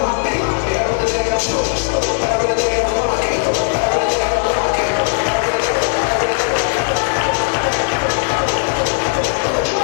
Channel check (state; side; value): silent; right; 59 dB below the other